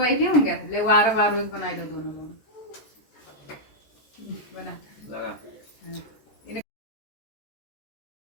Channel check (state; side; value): late; right; 14 ms